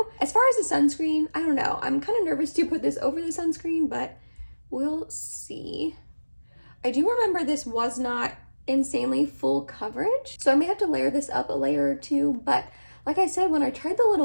As far as the sunscreen, I don't know. I'm kind of nervous to put this over the sunscreen, but we'll see. I do remember this was not insanely full coverage, so I may have to layer this up a layer or two, but like I said, when I tried the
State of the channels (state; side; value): inverted; both; correlation -1.00